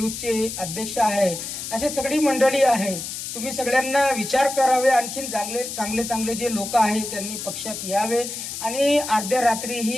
अध्यक्ष आहे। असे सगळी मंडळी आहे। तुम्ही सगळ्यांना विचार करावे, आणखीन चांगले चांगले जे लोक आहेत त्यांनी पक्षात यावे आणि अर्ध्या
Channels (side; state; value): left; noise; hiss, 7 dB below the sound